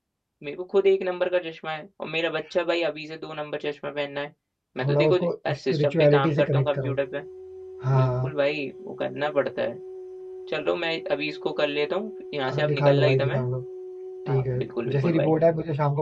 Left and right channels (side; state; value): both; identical; correlation 1.00